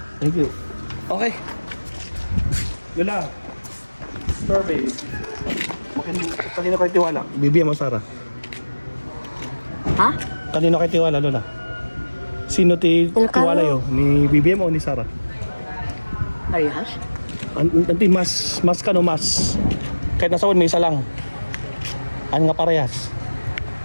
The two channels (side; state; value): both; inverted; correlation -1.00